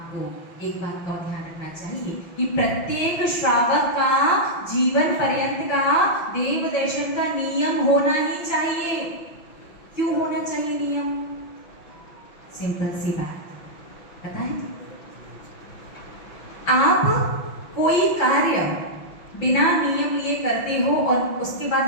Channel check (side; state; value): right; late; 5.7 ms